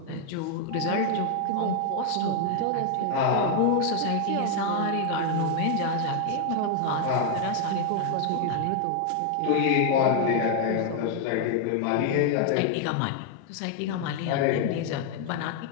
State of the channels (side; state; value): both; different; correlation 0.00